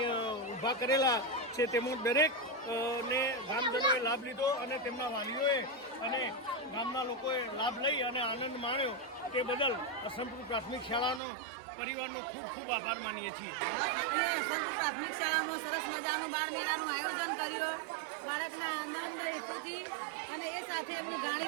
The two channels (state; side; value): drops out; left; at 11.2 s